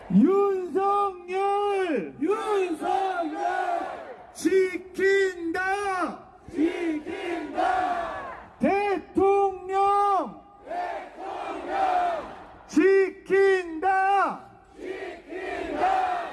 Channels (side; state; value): both; identical; correlation 1.00